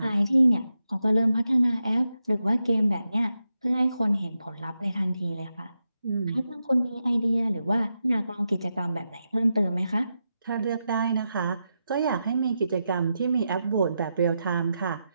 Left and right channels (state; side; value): inverted; both; correlation -0.87